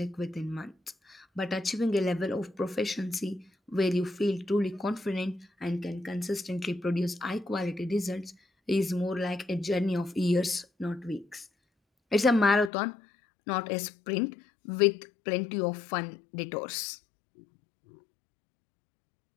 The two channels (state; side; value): drops out; right; at 12.7 s